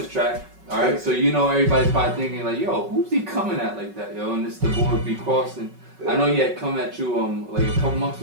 track. All right. So everybody's probably thinking like, yo, who's he coming at like that, yo? And it's the board be crossing. Yeah. I know he had come at you like a couple months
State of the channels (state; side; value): late; left; 5.3 ms